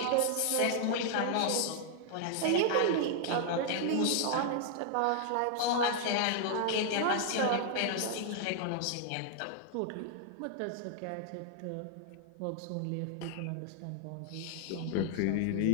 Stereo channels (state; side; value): different; both; correlation 0.00